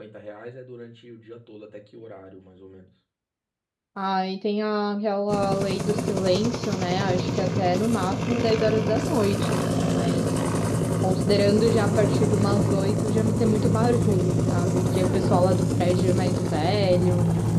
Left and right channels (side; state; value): both; identical; correlation 1.00